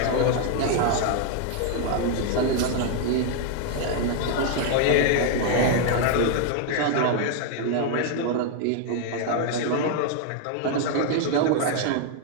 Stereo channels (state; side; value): different; both; correlation 0.00